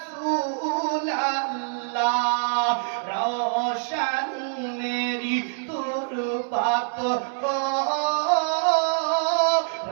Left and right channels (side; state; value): left; silent; digital silence